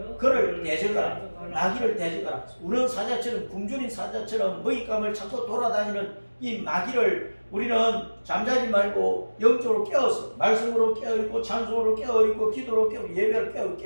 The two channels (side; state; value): both; inverted; correlation -1.00